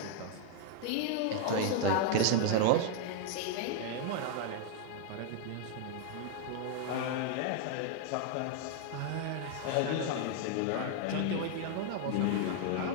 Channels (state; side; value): different; both; correlation 0.00